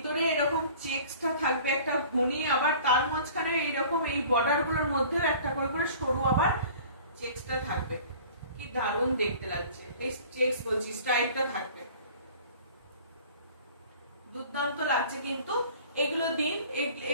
এরকম চেকসটা থাকবে একটা ঘুনি, আবার তার মাঝখানে এইরকম এই বর্ডার গুলোর মধ্যেও একটা করে করে সরু আবার চেকসটা থাকবে। কি দারুণ দেখতে লাগছে, এই চেকস বলছি স্ট্রাইপটা থাকবে, দুর্দান্ত লাগছে। কিন্তু এগুলো দিন,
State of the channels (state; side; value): inverted; both; correlation -0.47